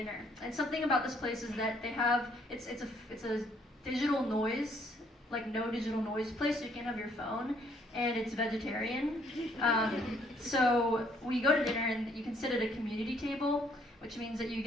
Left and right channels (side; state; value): both; normal; correlation 0.66